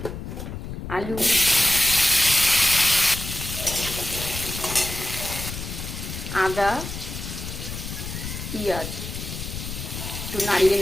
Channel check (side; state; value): left; noise; rumble, 7 dB below the sound